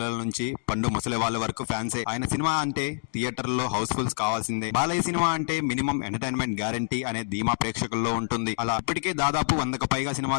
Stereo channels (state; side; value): silent; right; digital silence